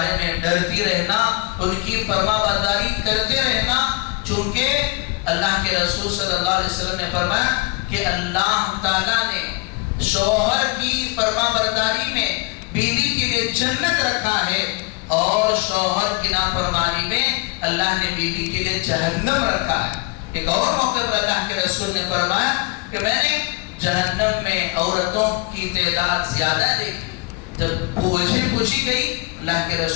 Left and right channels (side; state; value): right; quieter; 25.8 dB